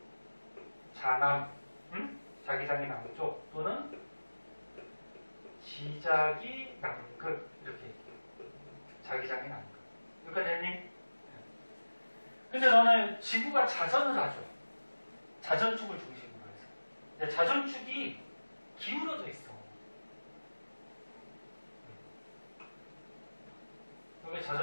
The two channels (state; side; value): inverted; both; correlation -1.00